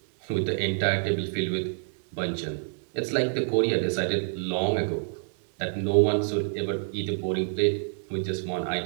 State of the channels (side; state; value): left; silent; digital silence